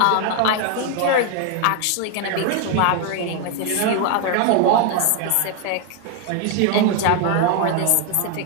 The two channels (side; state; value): both; different; correlation 0.01